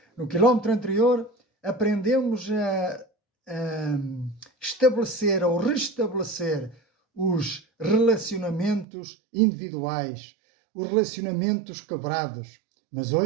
No quilómetro anterior, aprendemos a estabelecer ou restabelecer os relacionamentos individuais, os relacionamentos quebrados. Mas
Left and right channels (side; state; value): left; drops out; at 8.8 s